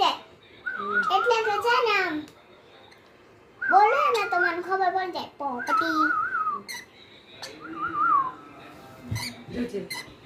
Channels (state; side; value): identical; both; correlation 1.00